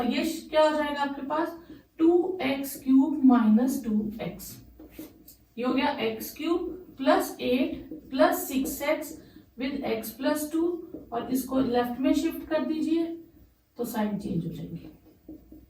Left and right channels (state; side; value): identical; both; correlation 1.00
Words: ये क्या हो जाएगा आपके पास 2x क्यूब माइनस 2x। ये हो गया x cube plus 8 plus 6x with x plus 2 और इसको लेफ्ट में शिफ्ट कर दीजिए तो साइन चेंज हो जाएंगे।